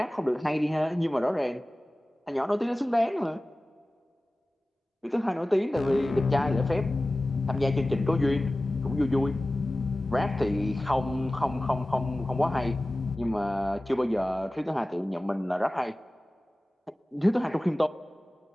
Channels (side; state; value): both; normal; correlation 0.97